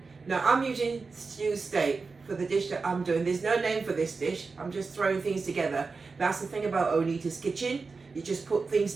Now, I'm using stew steak for the dish that I'm doing. There's no name for this dish. I'm just throwing things together. That's the thing about Onita's Kitchen. You just put things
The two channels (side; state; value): left; quieter; 4.4 dB